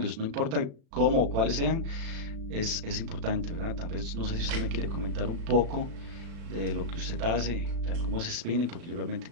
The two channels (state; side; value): late; left; 36 ms